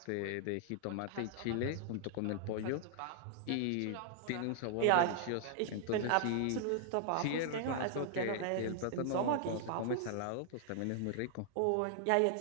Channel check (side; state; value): both; different; correlation -0.01